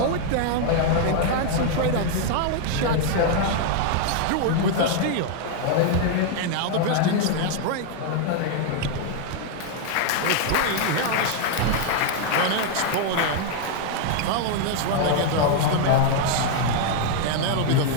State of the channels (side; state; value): both; different; correlation 0.00